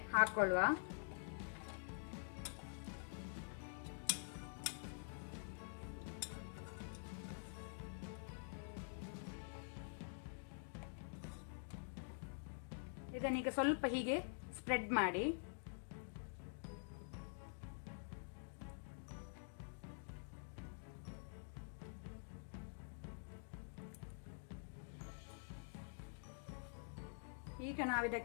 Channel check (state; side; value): silent; right; digital silence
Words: ಹಾಕೊಳ್ಳುವ. ಇದನ್ನೀಗ ಸ್ವಲ್ಪ ಹೀಗೆ ಸ್ಪ್ರೆಡ್ ಮಾಡಿ. ಈಗ